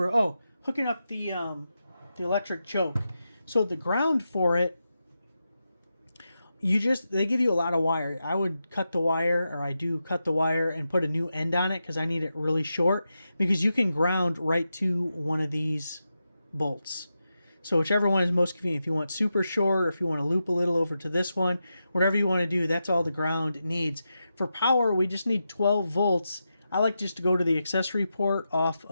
hooking up the electric choke. So the ground for it, they give you a lot of wire. I would cut the wire, or I do cut the wire and put a new end on it because I need it really short, because you can ground right to one of these bolts. So whichever one is most convenient. If you want super short, or if you want to loop a little over to this one, whatever you want to do, that's all the ground needs. For power, we just need 12 volts. I like just to go to the accessory port off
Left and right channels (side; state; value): both; inverted; correlation -0.89